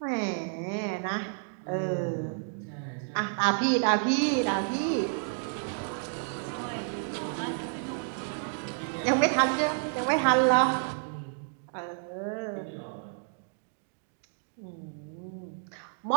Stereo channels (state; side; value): silent; left; digital silence